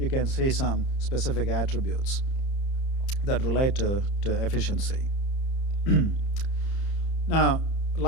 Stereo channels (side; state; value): right; late; 30 ms